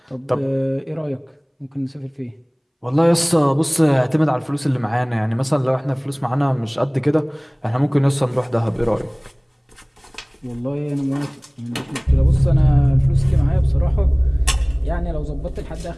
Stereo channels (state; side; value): identical; both; correlation 1.00